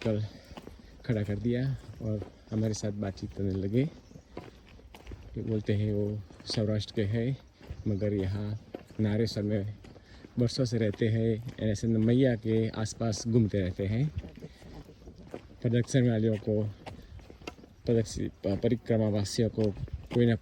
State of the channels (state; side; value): identical; both; correlation 1.00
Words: खड़ा कर दिया और हमारे साथ बातचीत करने लगे। बोलते हैं वो सौराष्ट्र के हैं, मगर यहाँ नारेसर में बरसों से रहते हैं। ऐसे मैया के आसपास घूमते रहते हैं। प्रदक्षिण वालियों को, परिक्रमा वासियों को कोई ना